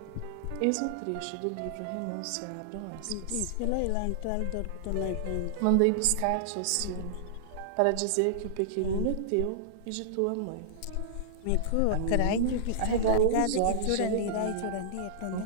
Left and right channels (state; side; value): different; both; correlation -0.02